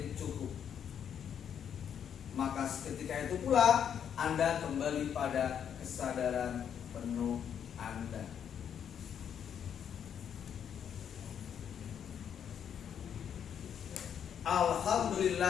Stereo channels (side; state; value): right; quieter; 8.5 dB